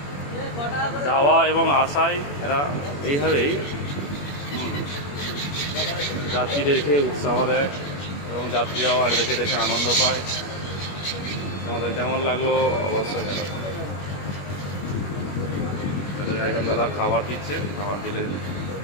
যাওয়া এবং আসায় এরা এইভাবেই যাত্রীদেরকে উৎসাহ দেয় এবং যাত্রীরাও আর দেখে দেখে আনন্দ পায়। আমাদের কেমন লাগলো অবশ্যই জানাবেন। একজন দাদা খাবার দিচ্ছে, খাবার দিলে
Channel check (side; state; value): right; late; 21 ms